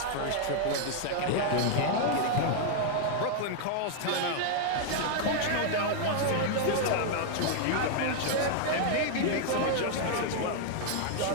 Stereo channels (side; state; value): both; different; correlation 0.00